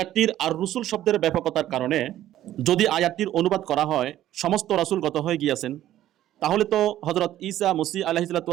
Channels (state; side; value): quieter; left; 13.0 dB